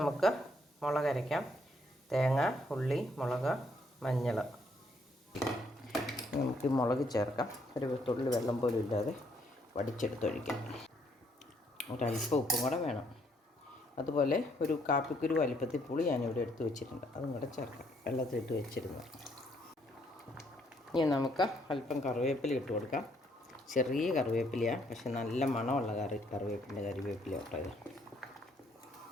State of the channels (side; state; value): both; normal; correlation 0.70